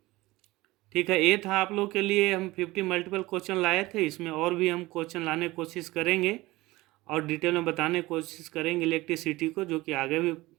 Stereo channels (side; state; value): left; quieter; 19.6 dB